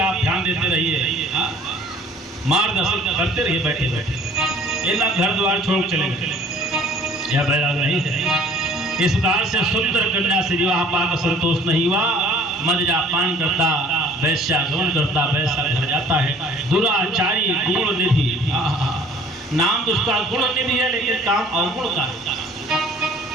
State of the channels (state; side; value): normal; both; correlation 0.52